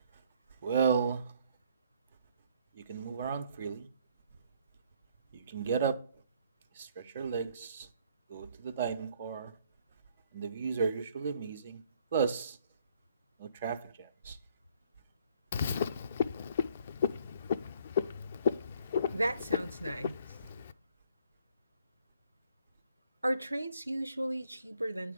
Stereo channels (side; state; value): both; inverted; correlation -0.64